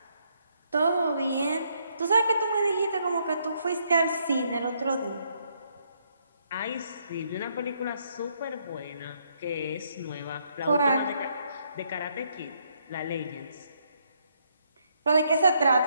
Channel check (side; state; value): both; inverted; correlation -0.73